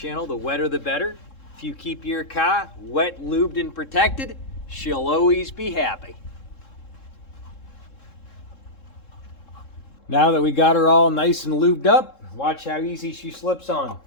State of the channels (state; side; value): late; right; 3.7 ms